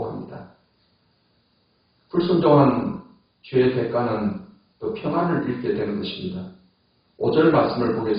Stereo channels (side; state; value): both; identical; correlation 1.00